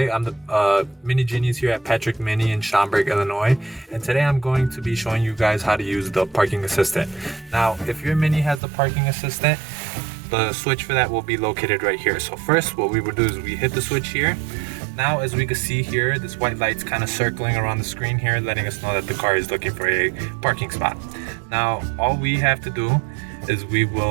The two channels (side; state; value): left; drops out; at 8.6 s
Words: the Mini Genius here at Patrick Mini in Schaumburg, Illinois. And today I'm going to be showing you guys how to use the parking assistant. Now, if your Mini has the parking assistant, the switch for that will be located right here. So first, what we would do is we hit the switch here. Now, as we can see here, this white light's kind of circling around the screen here, letting us know that the car is looking for a parking spot. Now, all we have to do is we